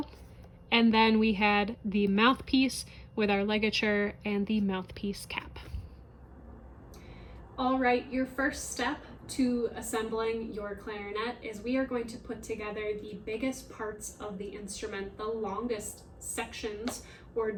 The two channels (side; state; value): both; identical; correlation 1.00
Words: and then we had the mouthpiece with our ligature and the mouthpiece cap. All right, your first step to assembling your clarinet is we are going to put together the biggest parts of the instrument, the longest sections or